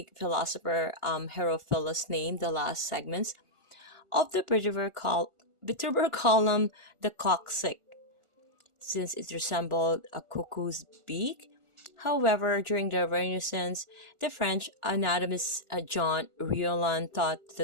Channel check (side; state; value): left; late; 1.4 ms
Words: philosopher Herophilus named the last segments of the vertebral column the coccyx, since it resembled a cuckoo's beak. However, during the Renaissance, the French anatomist Jean Riolan thought